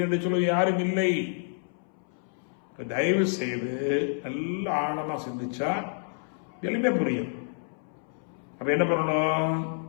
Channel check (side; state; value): right; silent; 59 dB below the other